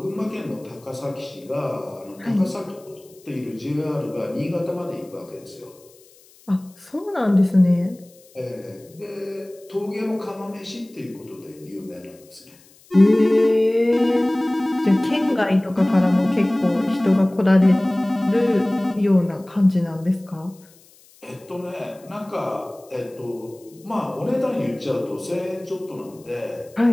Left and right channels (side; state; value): left; noise; hiss, 27 dB below the sound